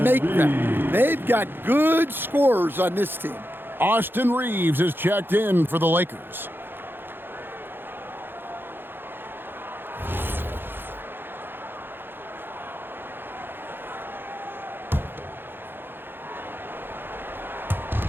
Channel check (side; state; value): left; late; 0.10 ms